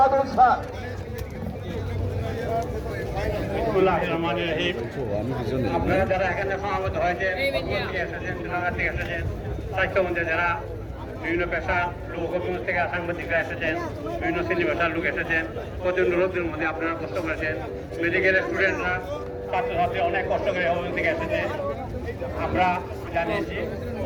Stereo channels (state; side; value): identical; both; correlation 1.00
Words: স্যার। আপনারা যারা এখানে সমাবেত হয়েছেন, এসেছেন, জেলাঘাট থেকে এসেছেন, স্বাস্থ্যমন্ত্রী যারা বিভিন্ন পেশা লোক, হবিগঞ্জ থেকে সাংবাদিকরা এসেছেন, বিভিন্ন শ্রেণী পেশার লোক এসেছেন, প্রচন্ড রোদের মধ্যে আপনারা কষ্ট করেছেন। মেডিকেলের স্টুডেন্টরা, ছাত্রছাত্রী অনেক কষ্ট করে হবিগঞ্জ থেকে এসেছে। আমরা জানিয়েছি